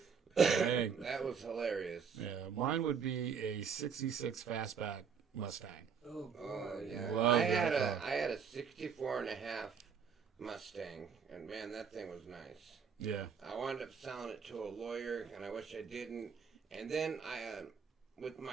Dang. That was hilarious. Yeah, mine would be a 66 Fastback Mustang. Oh yeah. Love I had that a 64 and a half Mustang, and man, that thing was nice. Yeah. I wound up selling it to a lawyer, and I wish I didn't. And then with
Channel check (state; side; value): quieter; left; 6.4 dB